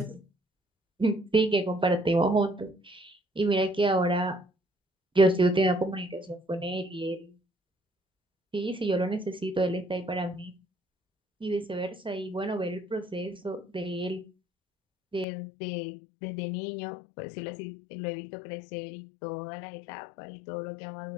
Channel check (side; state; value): right; drops out; at 15.2 s